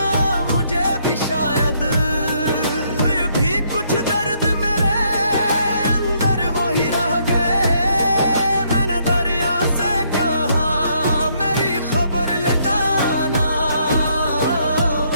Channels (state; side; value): inverted; both; correlation -0.70